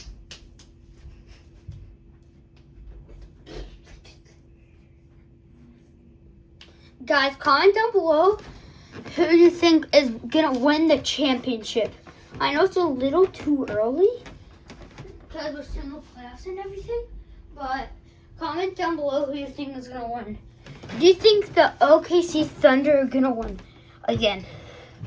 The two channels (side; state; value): both; identical; correlation 1.00